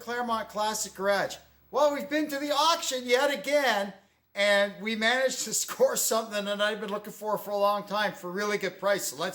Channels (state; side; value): identical; both; correlation 1.00